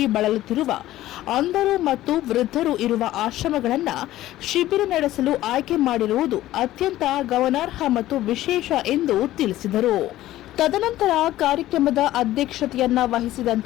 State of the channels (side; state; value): right; quieter; 14.8 dB